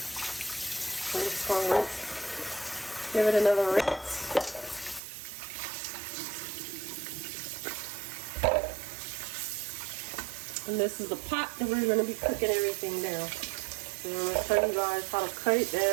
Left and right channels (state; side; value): drops out; left; at 5.0 s